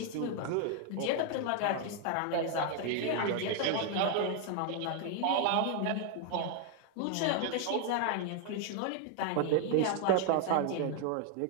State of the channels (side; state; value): both; different; correlation 0.00